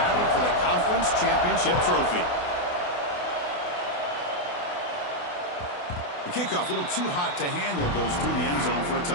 for the conference championship trophy. The kickoff, a little too hot to handle, goes through the end zone for a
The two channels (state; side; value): late; right; 28 ms